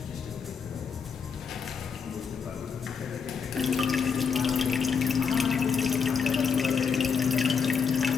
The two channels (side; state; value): right; quieter; 6.1 dB